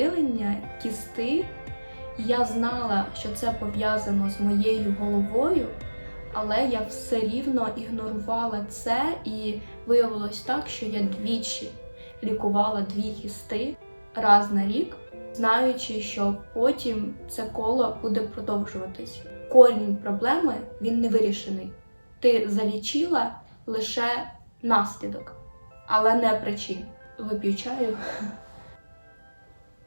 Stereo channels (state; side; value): inverted; both; correlation -1.00